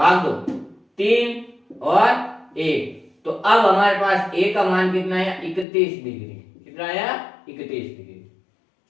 दो 3 और 1। तो अब हमारे पास a का मान कितना है, 31 डिग्री। कितना आया, 31 डिग्री।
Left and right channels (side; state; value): right; drops out; at 5.7 s